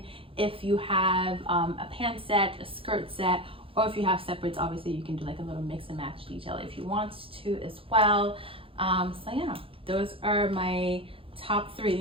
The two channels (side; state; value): left; late; 0.27 ms